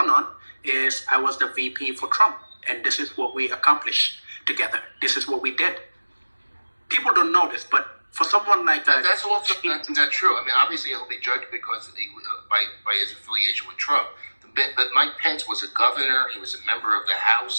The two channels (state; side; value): inverted; both; correlation -1.00